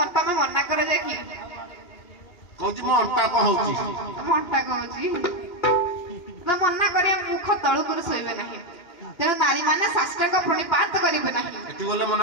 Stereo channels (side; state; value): right; late; 2.9 ms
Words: तमे मन्ना करे जे की कहूची मो अंटा को होची मो अंटा को होची ତ ମନା କରିବା ମୁଖ ତଳକୁ ଶୋଇବେ ନାହିଁ ତେଣୁ ନାରୀ ମାନେ ସାଷ୍ଟାଙ୍ଗ ପ୍रणिपात କରିବେ ନାହିଁ ଏଠି ଗଲେ